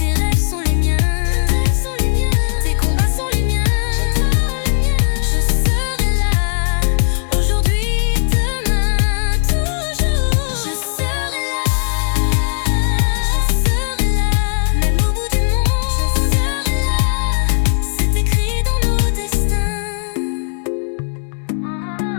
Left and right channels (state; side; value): silent; right; 68 dB below the other